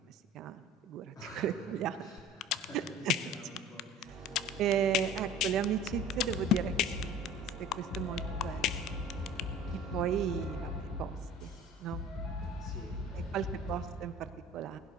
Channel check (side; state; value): both; normal; correlation 0.44